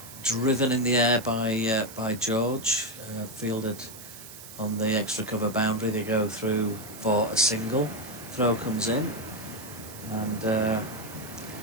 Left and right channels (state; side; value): noise; right; hiss, 15 dB below the sound